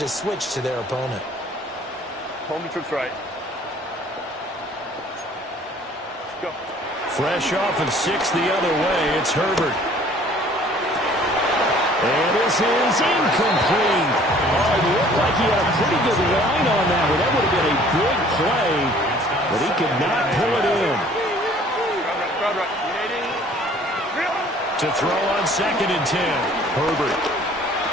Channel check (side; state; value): both; normal; correlation 0.54